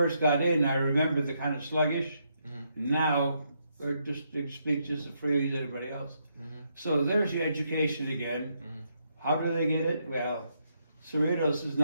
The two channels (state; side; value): inverted; both; correlation -0.77